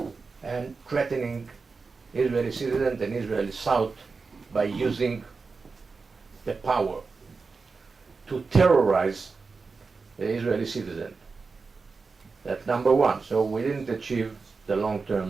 and threatening Israeli citizens and Israeli South by using the power to terrorize the Israeli citizen. That's number one. So we didn't achieve the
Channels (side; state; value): left; quieter; 4.5 dB